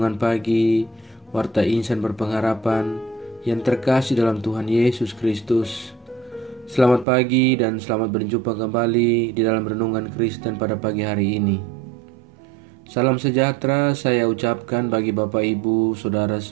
Pagi, Warta Insan Berpengharapan yang terkasih dalam Tuhan Yesus Kristus. Selamat pagi dan selamat berjumpa kembali di dalam Renungan Kristen pada pagi hari ini. Salam sejahtera saya ucapkan bagi Bapak Ibu, Saudara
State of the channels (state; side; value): drops out; left; at 7.1 s